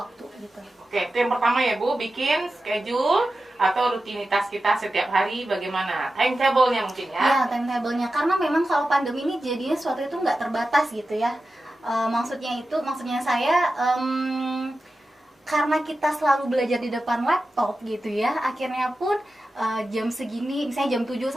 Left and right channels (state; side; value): normal; both; correlation 0.93